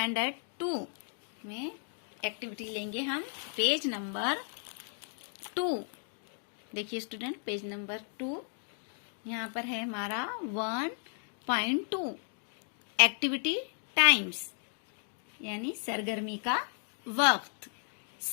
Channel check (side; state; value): right; silent; 55 dB below the other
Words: 2 में एक्टिविटी लेंगे हम पेज नंबर 2। देखिए स्टूडेंट, पेज नंबर 2 यहाँ पर है हमारा 1.2 एक्टिविटी टाइम्स यानी सरगर्मी का वक्त।